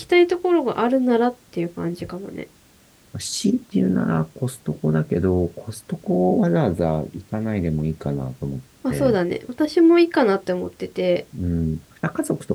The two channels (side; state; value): both; identical; correlation 1.00